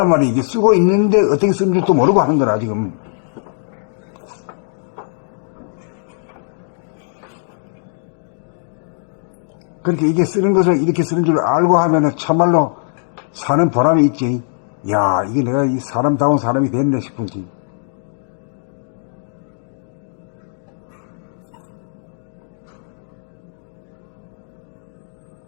말이야. 이게 쓰고 있는데 어떻게 쓰는 줄도 모르고 하는 거라, 지금. 그렇게 이게 쓰는 것을 이렇게 쓰는 줄 알고 하면은 참말로 사는 보람이 있지. 야, 이게 내가 이 사람다운 사람이 됐네 싶은지.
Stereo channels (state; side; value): silent; right; digital silence